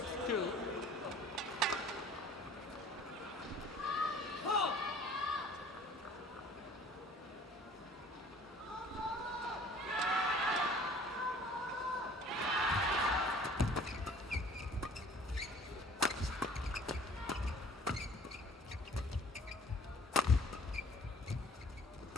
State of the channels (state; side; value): normal; both; correlation 0.51